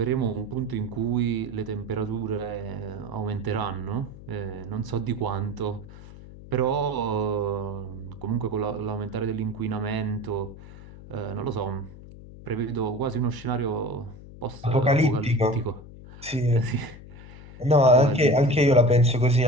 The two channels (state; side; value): noise; left; hum, 17 dB below the sound